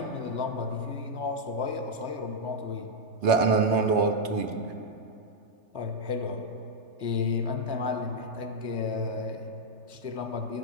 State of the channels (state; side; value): late; left; 3.3 ms